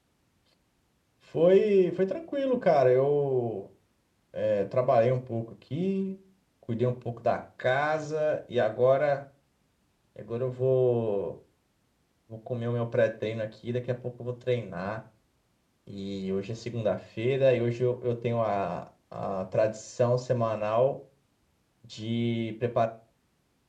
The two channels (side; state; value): both; identical; correlation 1.00